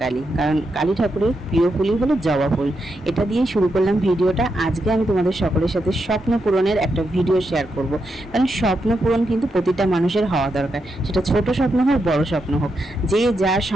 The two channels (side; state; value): both; normal; correlation 0.84